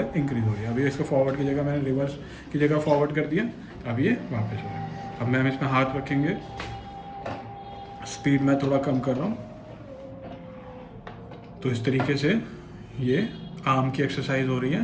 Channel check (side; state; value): both; identical; correlation 1.00